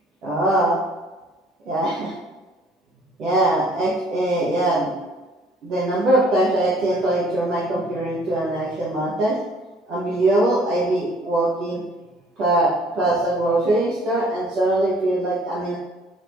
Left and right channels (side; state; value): both; normal; correlation 0.57